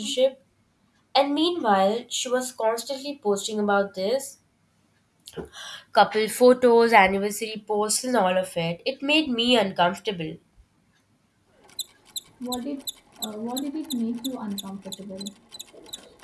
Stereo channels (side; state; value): both; identical; correlation 1.00